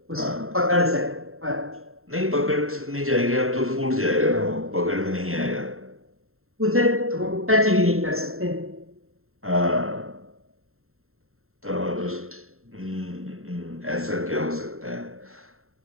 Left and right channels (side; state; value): left; late; 0.62 ms